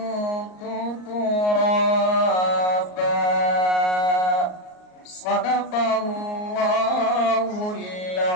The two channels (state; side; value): late; right; 38 ms